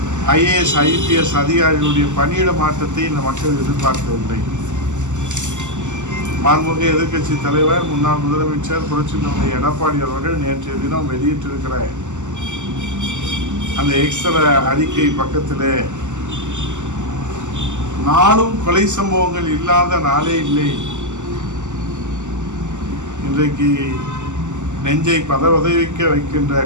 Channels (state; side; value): late; left; 0.84 ms